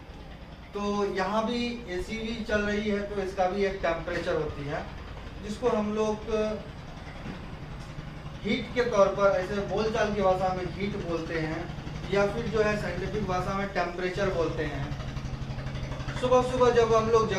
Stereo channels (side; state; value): both; identical; correlation 1.00